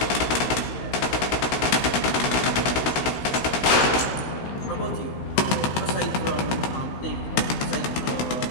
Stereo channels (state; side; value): late; right; 16 ms